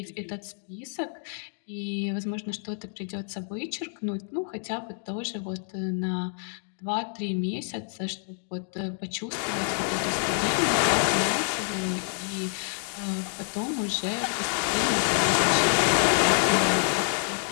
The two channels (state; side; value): silent; right; digital silence